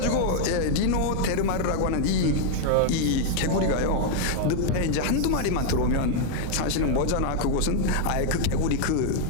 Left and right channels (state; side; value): different; both; correlation 0.00